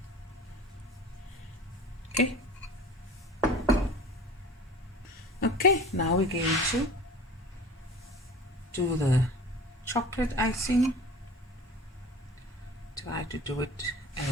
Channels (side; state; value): both; normal; correlation 0.40